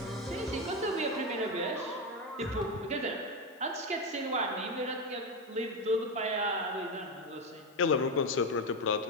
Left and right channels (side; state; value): left; noise; hiss, 29 dB below the sound